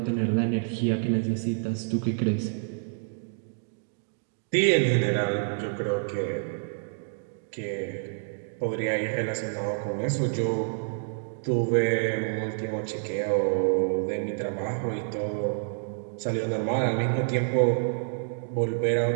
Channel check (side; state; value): left; silent; digital silence